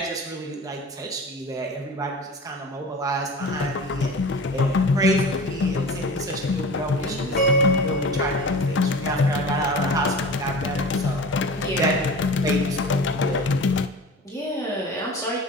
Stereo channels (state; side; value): normal; both; correlation 0.36